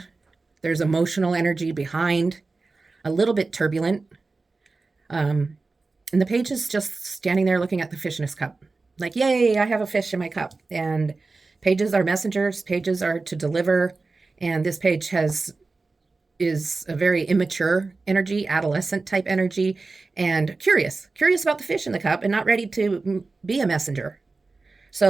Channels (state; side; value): quieter; left; 3.8 dB